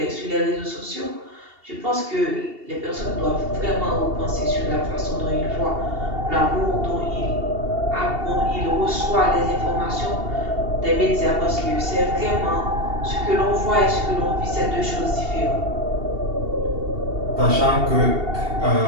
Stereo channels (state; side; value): late; left; 2.7 ms